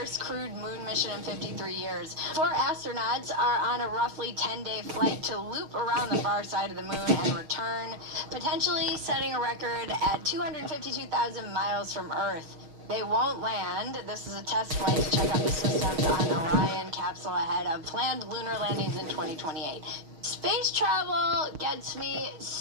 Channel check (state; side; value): late; left; 6.4 ms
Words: crewed moon mission in 53 years. 4 astronauts are on a roughly 10-day flight to loop around the far side of the moon and return, potentially setting a record at 252,000 miles from Earth. They won't land. This is a test flight to check out the systems on Orion capsule ahead of planned lunar landings in 2028. Space travel gets me